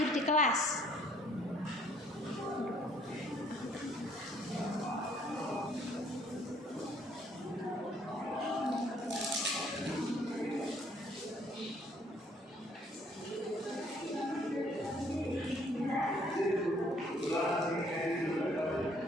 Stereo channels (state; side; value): normal; both; correlation 0.63